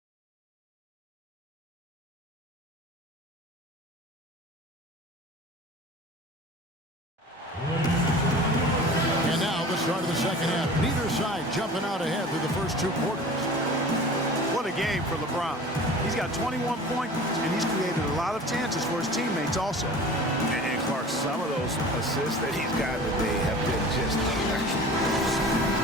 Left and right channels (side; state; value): both; normal; correlation 0.40